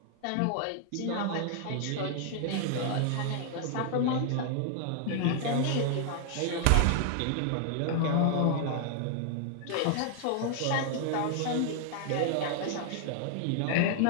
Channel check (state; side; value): different; both; correlation 0.00